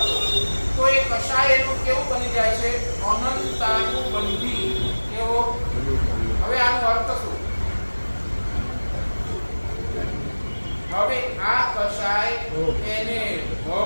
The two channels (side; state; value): both; inverted; correlation -1.00